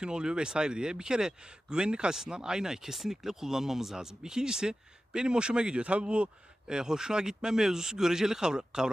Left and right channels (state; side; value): normal; both; correlation 0.94